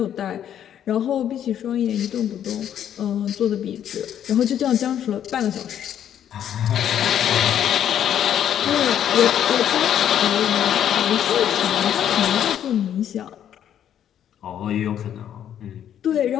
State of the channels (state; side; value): quieter; right; 10.0 dB